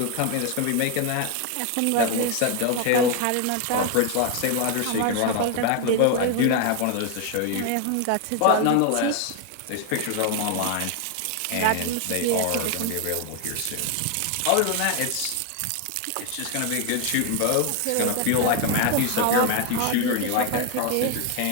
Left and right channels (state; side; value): different; both; correlation 0.01